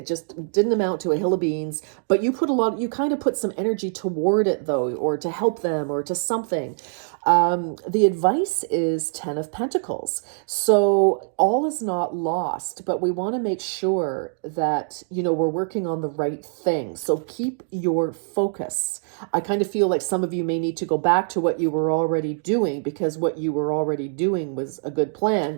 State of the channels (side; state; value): left; silent; digital silence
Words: just didn't amount to a hill of beans, but you kind of put some energy toward it though, or to help them or to something. The advice is 10 of Pentacles. So all is not lost, but we want to make sure that, we're working on the right thing. So keep your focus. I kind of feel like some of you may need to go back to what you were already doing, because what you were already doing was a good